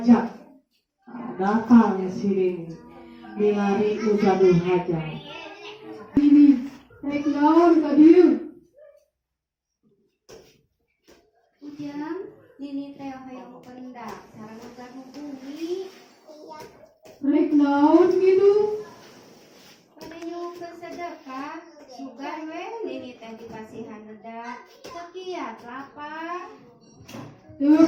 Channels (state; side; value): identical; both; correlation 1.00